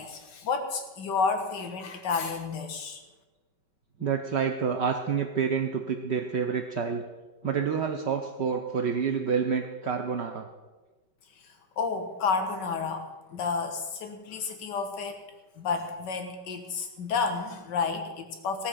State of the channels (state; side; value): late; right; 5.2 ms